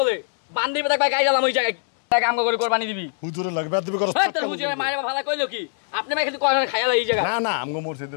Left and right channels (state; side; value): silent; right; digital silence